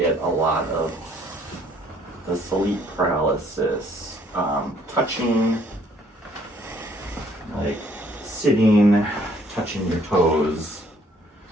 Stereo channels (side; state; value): both; normal; correlation 0.62